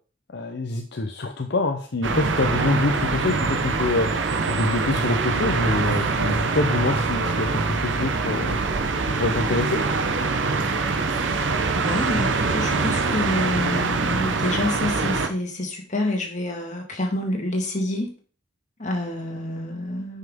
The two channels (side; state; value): both; normal; correlation 0.39